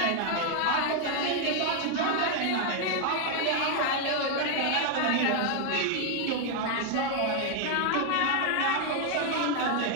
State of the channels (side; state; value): both; different; correlation 0.00